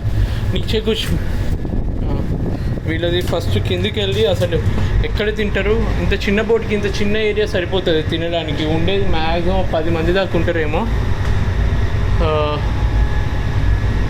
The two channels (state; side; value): identical; both; correlation 1.00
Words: నీచే కూర్చు. వీళ్ళది ఫస్ట్ కిందికి వెళ్ళి అసలు ఎక్కడ తింటారు. ఇంత చిన్న బోట్కి ఇంత చిన్న ఏరియా సరిపోతుంది తినడానికి. ఉండేది మ్యాక్సిమం 10 మంది దాకా ఉంటారేమో.